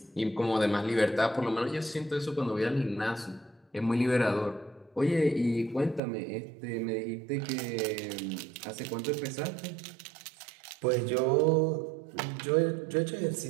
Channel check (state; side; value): drops out; left; at 6.0 s